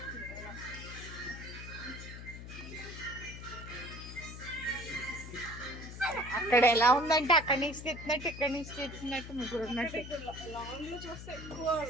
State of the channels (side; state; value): left; noise; hum, 11 dB below the sound